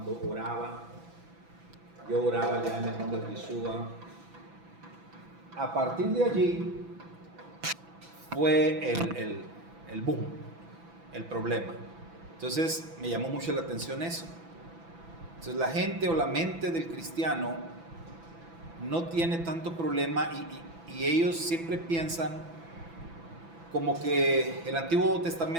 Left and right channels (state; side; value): late; left; 6.0 ms